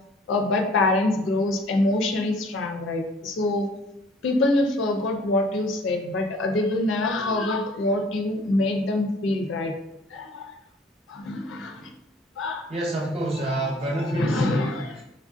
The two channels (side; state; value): both; normal; correlation 0.54